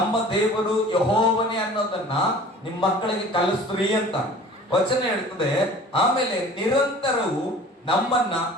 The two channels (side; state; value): both; normal; correlation 0.45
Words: ದೇವರು ಯೆಹೋವನೇ ಅನ್ನೋದನ್ನ ನಿಮ್ಮ ಮಕ್ಕಳಿಗೆ ಕಲಿಸ್ತ್ರಿ ಅಂತ ವಚನ ಹೇಳ್ತದೆ. ಆಮೇಲೆ ನಿರಂತರವು ನಮ್ಮನ್ನ